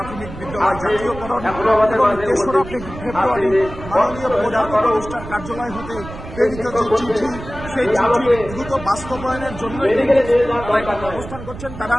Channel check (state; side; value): noise; right; rumble, 12 dB below the sound